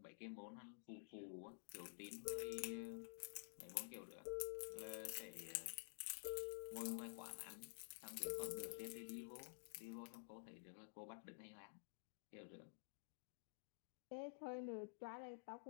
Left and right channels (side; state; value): right; silent; digital silence